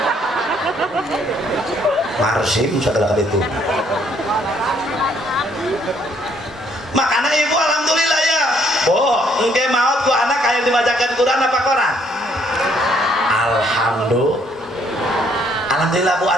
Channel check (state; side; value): normal; both; correlation 0.67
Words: marsim sagala kitu makana ibu alhamdulillah ya engke maot ku anak aya dibacakeun Quran apa koran alhamdulillah bu